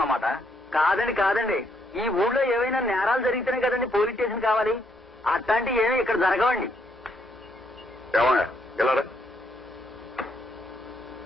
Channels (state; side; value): normal; both; correlation 0.73